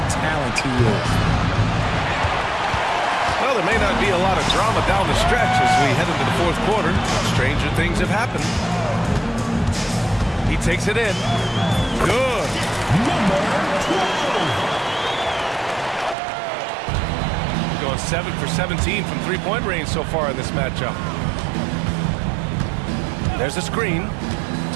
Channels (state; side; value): drops out; left; at 16.2 s